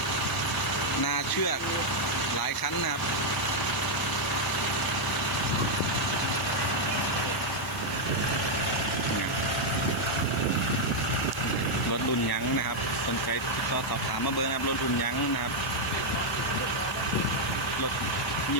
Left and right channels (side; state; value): right; noise; hiss, 20 dB below the sound